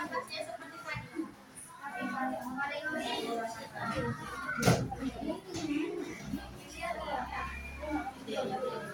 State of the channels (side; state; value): both; identical; correlation 1.00